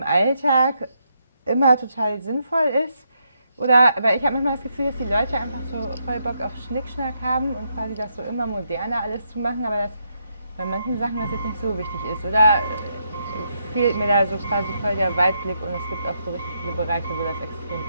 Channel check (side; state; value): both; inverted; correlation -0.79